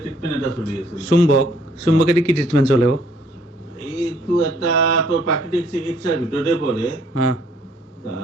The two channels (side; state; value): both; normal; correlation 0.63